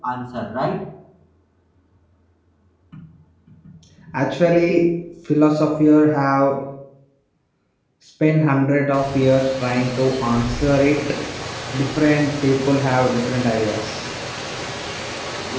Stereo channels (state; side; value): identical; both; correlation 1.00